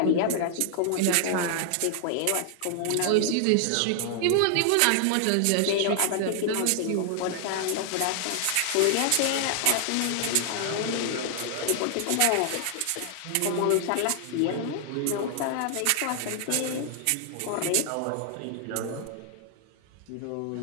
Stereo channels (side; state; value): both; different; correlation 0.00